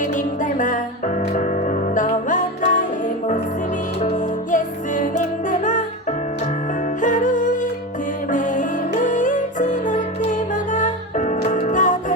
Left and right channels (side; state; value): both; normal; correlation 0.22